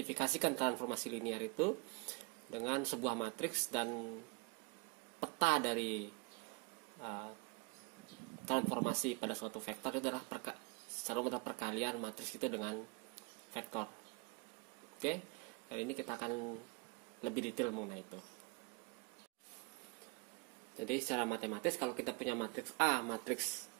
transformasi linear itu dengan sebuah matriks dan peta dari transformasi pada suatu vektor itu adalah secara mudah perkalian matriks itu dengan vektor. Oke, kali ini kita akan lebih detail mengenai itu. Jadi secara matematis kalau kita punya matriks A, matriks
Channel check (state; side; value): quieter; left; 30.3 dB